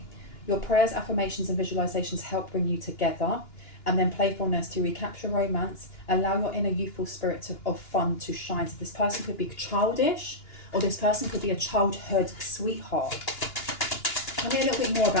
Your prayers, affirmations, and visualizations help bring you together. And then playfulness, to recapture romance, allow your inner youthful spirit of fun to shine. So this person could be childish, or this person could be a childhood sweetheart. Tell me a little bit more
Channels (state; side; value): late; right; 2.9 ms